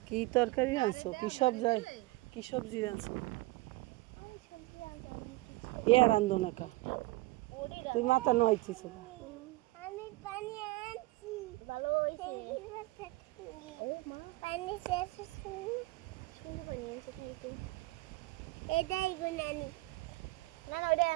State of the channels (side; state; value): left; quieter; 21.1 dB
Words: কি তরকারি রানছো কি সবজি রানছো এ রান্ধো না কা তুই মাথা নইছিস আমি পানি আনছি ভালো হইছে ও মা পানি শেষ সুন্দর পানি আছে খাইতে এটাই গুনানি না না ওইটা